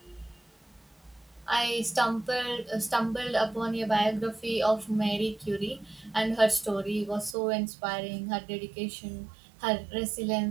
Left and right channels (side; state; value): left; drops out; at 7.4 s